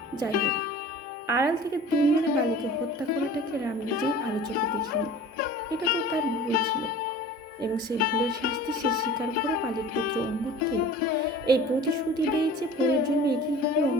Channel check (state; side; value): normal; both; correlation 0.42